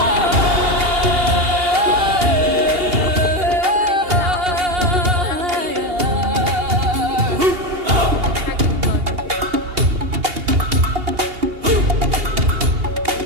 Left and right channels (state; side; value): late; left; 2.8 ms